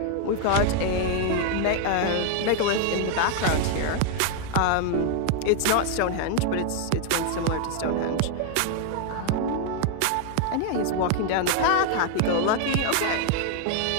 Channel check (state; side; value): different; both; correlation 0.00